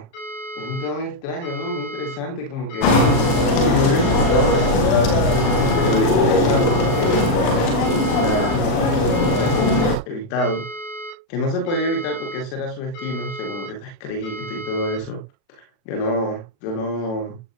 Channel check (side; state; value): right; late; 36 ms